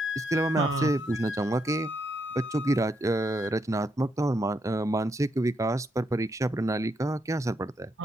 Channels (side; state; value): both; normal; correlation 0.78